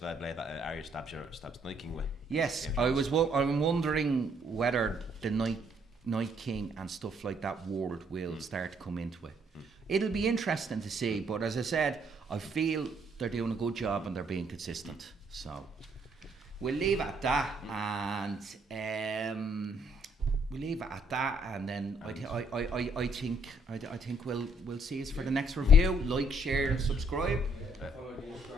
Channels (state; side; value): normal; both; correlation 0.68